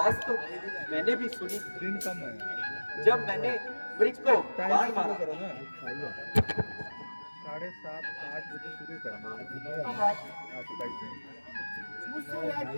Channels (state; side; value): inverted; both; correlation -1.00